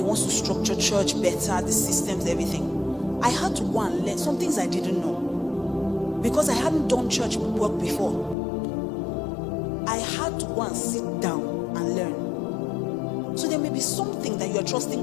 wants to structure church better, the systems, everything. I had to go and learn some things I didn't know. Because I hadn't done church work before. I had to go and sit down and learn. So there may be something that you are trusting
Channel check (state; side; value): drops out; right; at 8.3 s